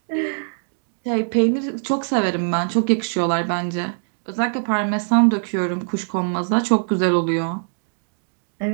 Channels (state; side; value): silent; left; digital silence